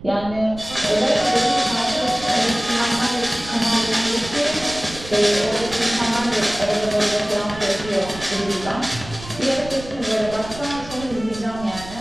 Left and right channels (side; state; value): right; noise; rumble, 14 dB below the sound